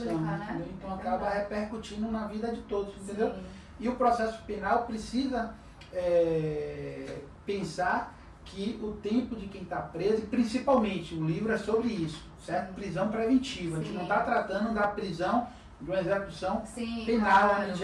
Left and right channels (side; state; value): both; identical; correlation 1.00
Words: né? Entendeu? Então acaba repercutindo na vida de todos, entendeu? Sim. E o processo penal precisa pensar que o tempo de quem está preso, e principalmente o livro é sobre isso, certo? Prisão preventiva. Sim. A gente não está tratando da prisão de uma execução penal, onde